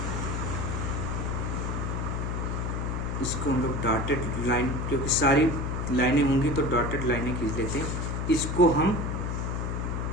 इसको हम लोग डॉटेड लाइन, क्योंकि सारी लाइनें होंगी तो डॉटेड लाइनें खींच लेते हैं। इसको हम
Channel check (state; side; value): noise; left; hum, 2 dB below the sound